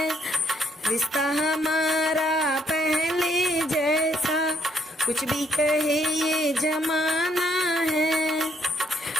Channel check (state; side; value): normal; both; correlation 0.70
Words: रिश्ता हमारा पहले जैसा कुछ भी कहे ये जमाना है।